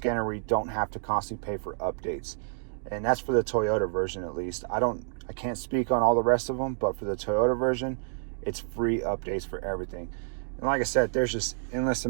where you don't have to constantly pay for updates. And that's for the Toyota version, at least. I can't speak on all the rest of them, but for the Toyota version, it's free updates for everything. And like I said, there's just endless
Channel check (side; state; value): left; silent; digital silence